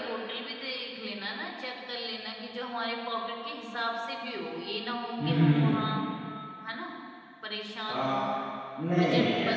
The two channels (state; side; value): identical; both; correlation 1.00